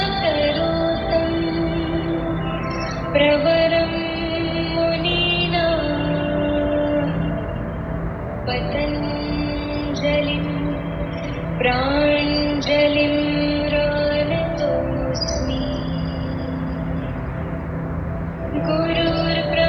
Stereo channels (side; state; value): both; identical; correlation 1.00